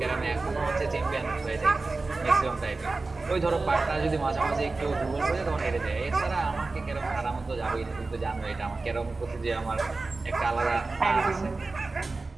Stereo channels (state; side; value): quieter; left; 3.6 dB